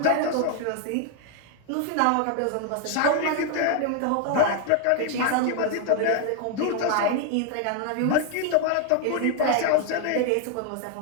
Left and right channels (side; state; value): both; different; correlation 0.00